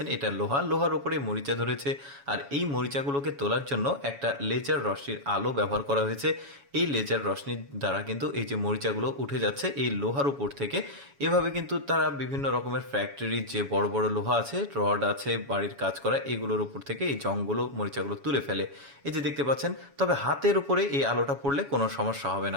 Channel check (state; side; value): late; left; 7.1 ms